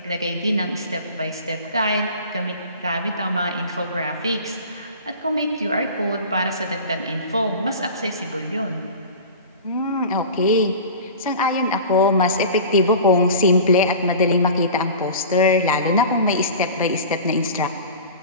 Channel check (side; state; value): both; inverted; correlation -0.37